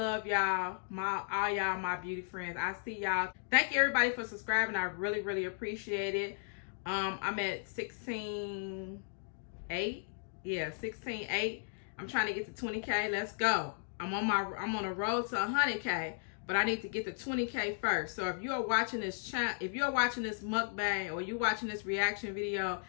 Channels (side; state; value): right; silent; digital silence